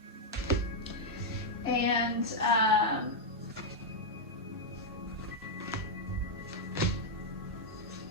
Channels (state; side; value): normal; both; correlation -0.02